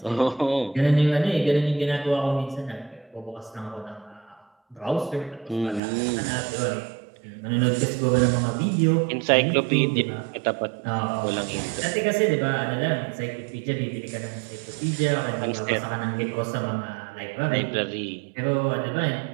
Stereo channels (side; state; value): left; drops out; at 5.8 s